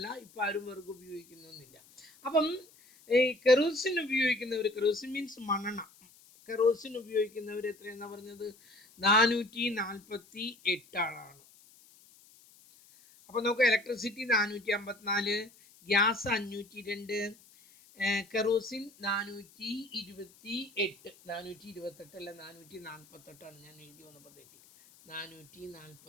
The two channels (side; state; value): left; noise; hiss, 26 dB below the sound